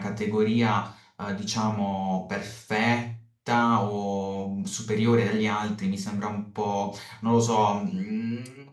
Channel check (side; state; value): both; identical; correlation 1.00